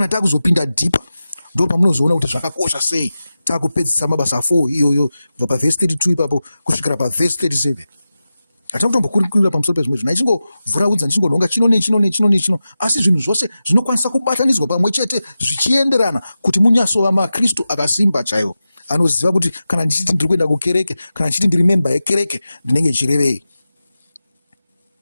takuzopinda deeper ndo pamunozoona kuti zvakakosha sei takupedzisa mabasa 4 iyoyo kubva pavhesi 32 ipapo kusvikira pavhesi 37. Hatakutombokurira pamusoro pezvimwe zvinhu, ichingovhuraudza ndichingonhonga chino, asi zvinhu zvose zvinokwanisa kubatanidzwa pamwe chete zvichienderana kuti munyasova maKristu akasimba chaiwo, anoziva kuti kana ndichiti ndiri kuenda kukereke, kana ndichiti ndiri memba yekereke, ndinenge ndichirevei.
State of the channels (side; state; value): both; inverted; correlation -0.93